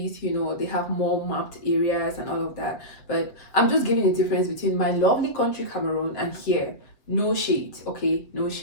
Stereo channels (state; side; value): late; right; 7.6 ms